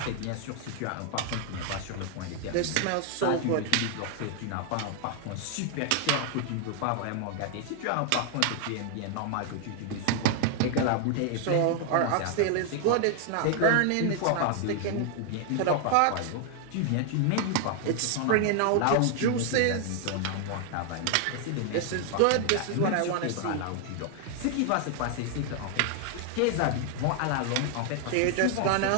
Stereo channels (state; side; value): different; both; correlation 0.00